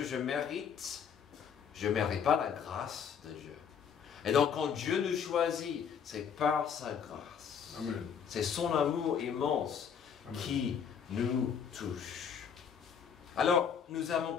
je mérite, je ne mérite pas la grâce de Dieu. Et donc quand Dieu nous choisit, c'est par sa grâce. Amen. C'est son amour immense Amen. Qui nous touche. Alors, nous avons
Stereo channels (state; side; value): quieter; right; 7.4 dB